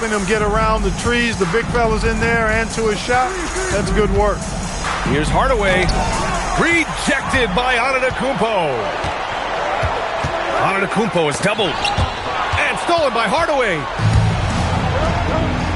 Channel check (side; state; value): both; identical; correlation 1.00